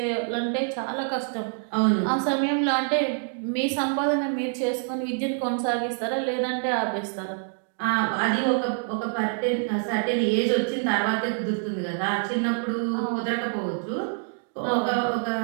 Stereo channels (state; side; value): silent; left; 61 dB below the other